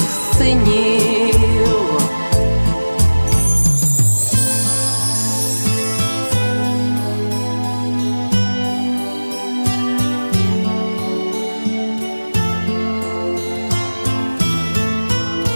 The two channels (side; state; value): both; inverted; correlation -1.00